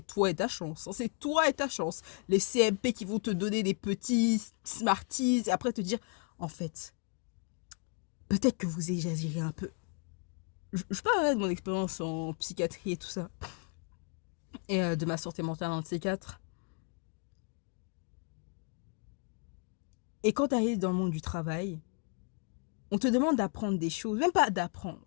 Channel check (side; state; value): right; quieter; 37.6 dB